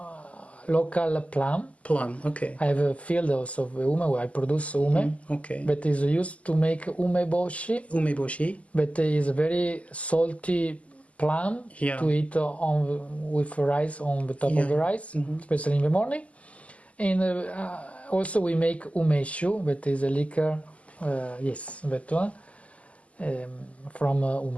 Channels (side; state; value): right; late; 0.066 ms